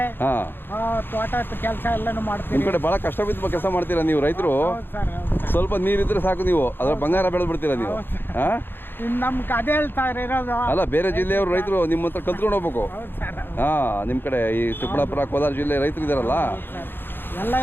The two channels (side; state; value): right; late; 0.10 ms